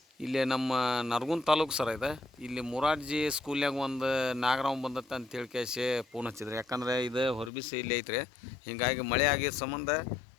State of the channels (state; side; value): drops out; right; at 7.5 s